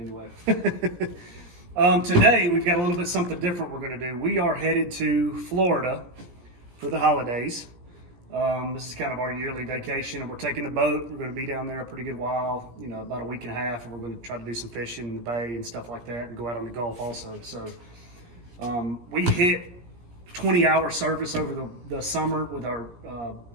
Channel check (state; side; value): late; left; 17 ms